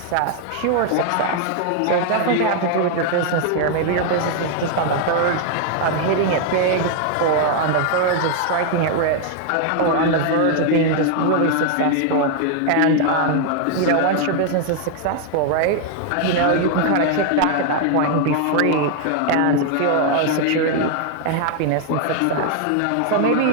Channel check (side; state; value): both; different; correlation 0.00